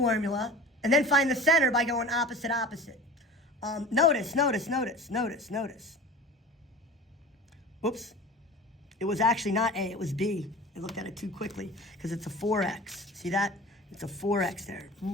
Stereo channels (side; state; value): both; normal; correlation 0.38